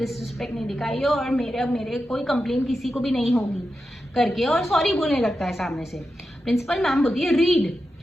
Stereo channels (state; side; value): normal; both; correlation 0.90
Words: नहीं दिखाई है और मेरे कोई कंप्लेन किसी को भी नहीं होगी करके, और सॉरी बोलने लगता है सामने से। प्रिंसिपल मैम बोलती है रीड।